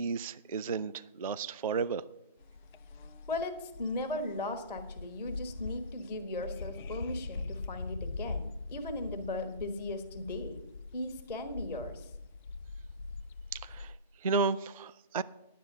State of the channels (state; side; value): inverted; both; correlation -0.36